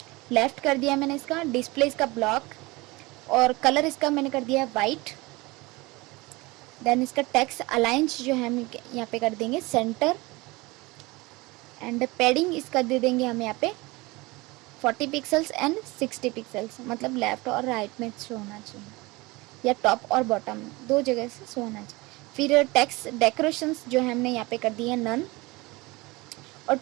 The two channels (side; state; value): left; quieter; 23.1 dB